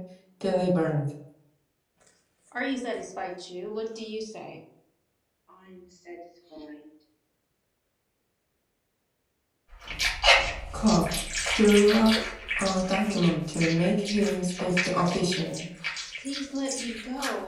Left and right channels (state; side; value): identical; both; correlation 1.00